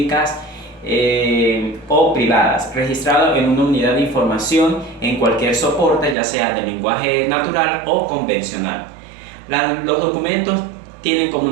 o privadas, registrado en una unidad de información en cualquier soporte, ya sea de lenguaje natural o convencional. Los documentos tienen como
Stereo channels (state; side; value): drops out; left; at 6.2 s